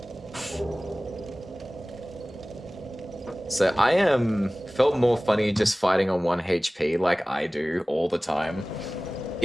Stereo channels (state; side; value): normal; both; correlation 0.98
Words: So I felt more funny just fighting on 1 HP like I do all the time.